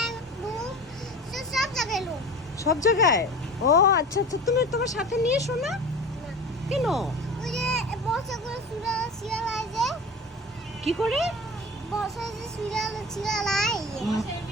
রুম, সব জায়গায় রুম। সব জায়গায়? ও আচ্ছা আচ্ছা, তুমি তোমার সাথে নিয়ে এসো না? না, কেন? ওই যে বসে করে শিয়ালায় যে কি করে? বসে যে শিয়ালায়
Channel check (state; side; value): normal; both; correlation 0.35